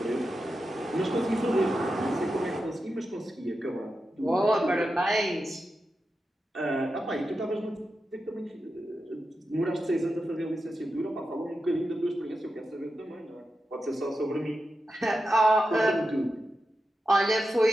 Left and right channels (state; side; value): normal; both; correlation 0.90